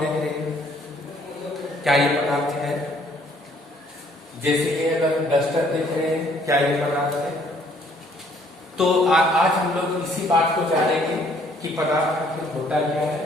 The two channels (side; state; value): both; normal; correlation 0.62